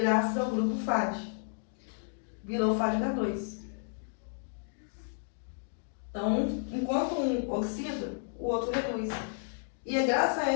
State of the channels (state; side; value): silent; right; digital silence